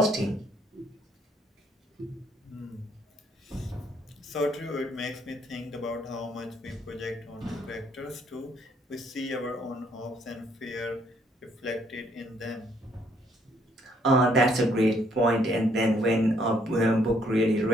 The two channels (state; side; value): normal; both; correlation 0.68